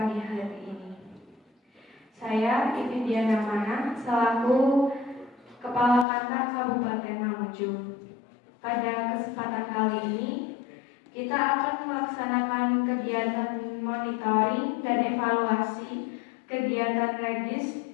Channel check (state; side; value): drops out; right; at 6.1 s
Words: hari ini. Saya Ipin Diana Mana selaku Kepala Kantor Kabupaten Mamuju. Pada kesempatan kali ini kita akan melaksanakan kegiatan monitoring dan evaluasi kegiatan Redis